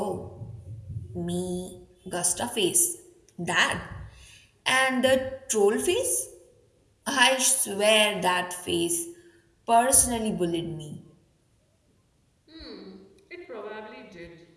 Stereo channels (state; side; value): identical; both; correlation 1.00